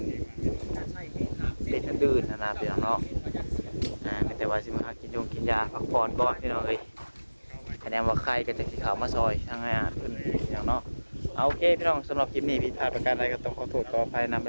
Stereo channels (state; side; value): inverted; both; correlation -1.00